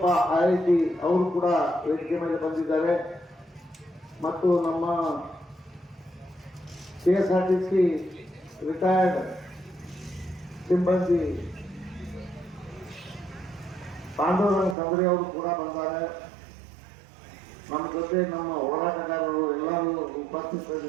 IIT ಅವರು ಕೂಡ ವೇದಿಕೆ ಮೇಲೆ ಬಂದಿದ್ದಾರೆ. ಮತ್ತು ನಮ್ಮ KSRTC ರಿಟೈರ್ಡ್ ಸಿಬ್ಬಂದಿ ಪಾಂಡವರಂಗ ತಂಗ್ರಿ ಅವರು ಕೂಡ ಬಂದ್ದಾರೆ. ನಮ್ಮ ಜೊತೆ ನಮ್ಮ ಹೋರಾಟಗಾರರು ಎಲ್ಲರೂ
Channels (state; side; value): drops out; left; at 14.8 s